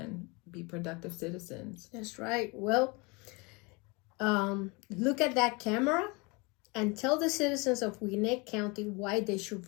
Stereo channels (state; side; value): quieter; right; 28.1 dB